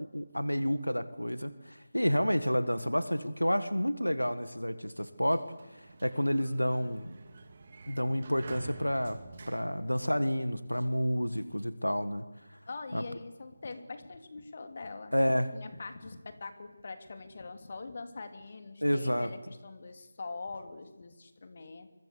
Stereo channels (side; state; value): both; inverted; correlation -0.99